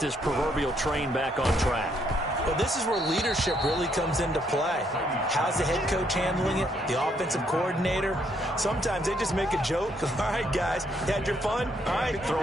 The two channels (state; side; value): normal; both; correlation 0.72